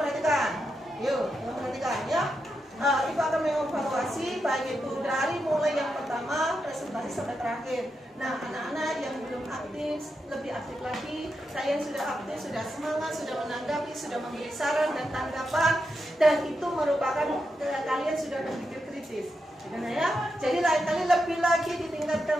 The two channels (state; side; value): normal; both; correlation 0.86